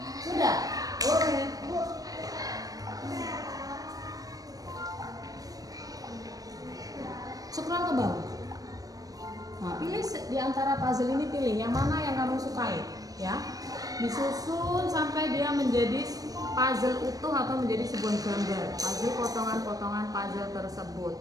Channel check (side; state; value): left; late; 0.18 ms